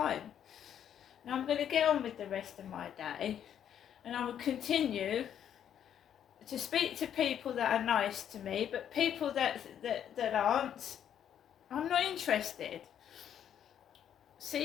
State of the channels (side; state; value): right; quieter; 9.5 dB